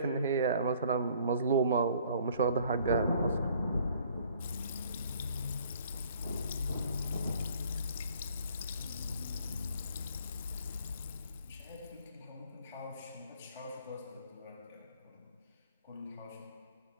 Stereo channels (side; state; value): both; inverted; correlation -0.58